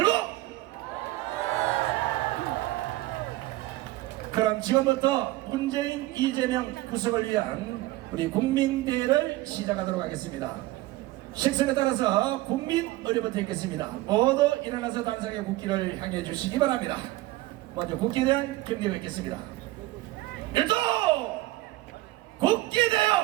그럼 지금부터 문재인, 이재명 구속을 위한 우리 국민대회를 시작하도록 하겠습니다. 식선에 따라서 국민 의례부터 읽겠습니다. 모두 일어나서 단상의 국기를 향해 주시기 바랍니다. 먼저 국기에 대한 경례를 읽겠습니다. 일도 국기에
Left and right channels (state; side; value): quieter; left; 18.1 dB